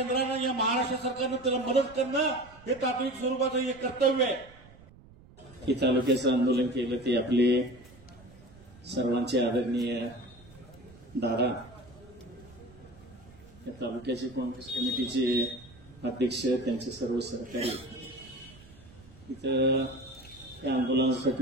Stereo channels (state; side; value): noise; right; rumble, 23 dB below the sound